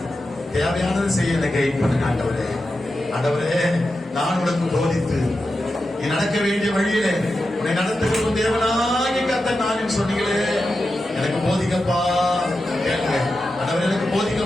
தேவையானதை செய்ய எனக்கு கைட் பண்ணுங்க ஆண்டவரே. ஆண்டவரே நான் உனக்கு போதித்து நீ நடக்க வேண்டிய வழியிலே உன்னை நடத்துகிறோம் தேவனாகி கர்த்தர் நான் சொன்னீங்களே, எனக்கு போதிக்கப்பா. கேளுங்க ஆண்டவரே, எனக்கு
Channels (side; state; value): both; normal; correlation 0.90